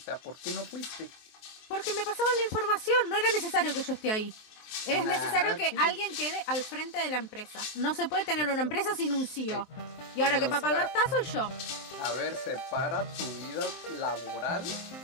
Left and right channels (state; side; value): late; right; 23 ms